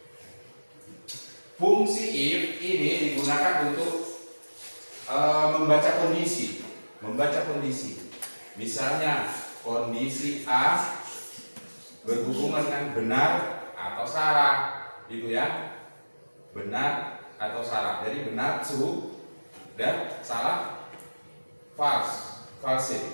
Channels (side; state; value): both; inverted; correlation -1.00